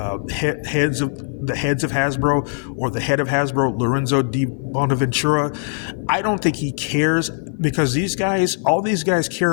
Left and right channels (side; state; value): right; silent; 55 dB below the other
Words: of Hasbro or the head of Hasbro, Lorenzo Di Bonaventura, I don't think he cares because all these guys care